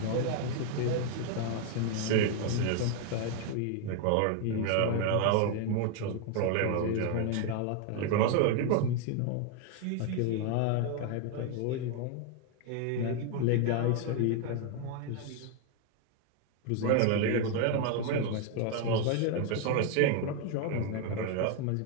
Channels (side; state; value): both; different; correlation 0.01